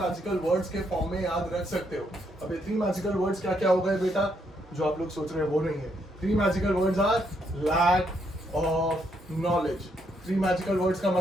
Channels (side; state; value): both; normal; correlation 0.75